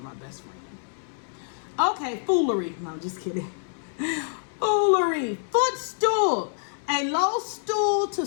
my best friend. Okay, foolery. No, I'm just kidding. Foolery. Footstool. A low stool to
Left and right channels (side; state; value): right; silent; 60 dB below the other